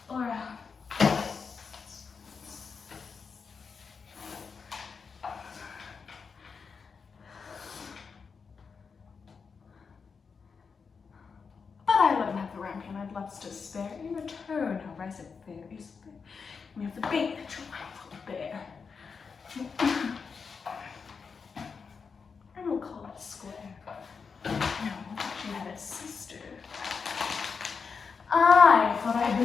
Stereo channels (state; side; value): quieter; right; 5.5 dB